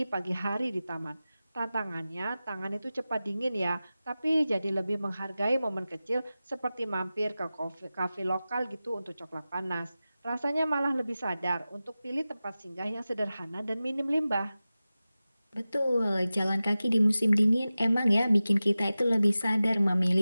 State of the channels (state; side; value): inverted; both; correlation -0.95